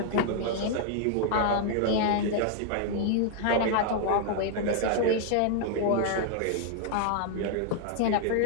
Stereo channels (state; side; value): different; both; correlation 0.00